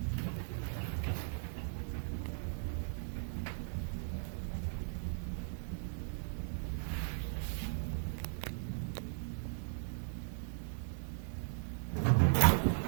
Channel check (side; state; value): left; silent; digital silence